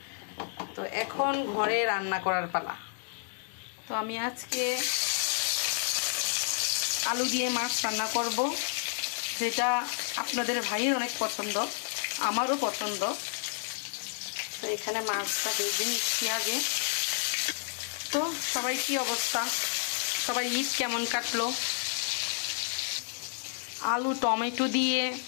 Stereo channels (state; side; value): silent; right; digital silence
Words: তো এখন ঘরে রান্না করার পালা। তো আমি আজকে আলু দিয়ে মাছ রান্না করব, যেটা আপনাদের ভাইয়ের অনেক পছন্দ, আমারও পছন্দ। তো এখানে মাছটা ভেজে নিচ্ছি আগে। তো সবাই কি অবস্থা? সবাই ঈদ কেমন কাটলো? আলু টমেটো দিয়ে